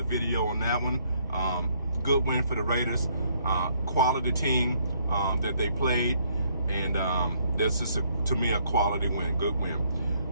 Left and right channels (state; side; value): inverted; both; correlation -0.68